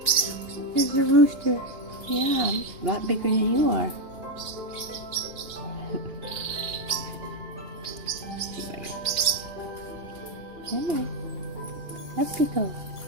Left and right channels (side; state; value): left; late; 2.8 ms